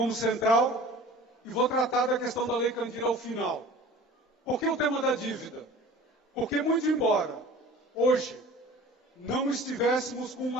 central e vou tratar da questão da Lei Candir ao final. Por que o tema da dívida? Porque, muito embora hoje não estivéssemos com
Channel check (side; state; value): both; normal; correlation 0.43